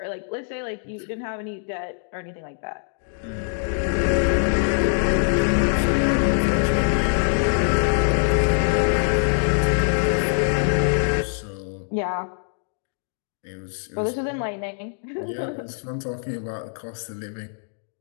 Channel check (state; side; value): silent; right; digital silence